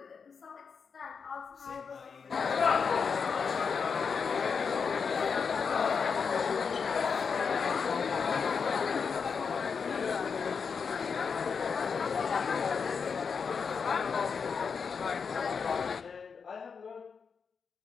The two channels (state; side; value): quieter; right; 5.8 dB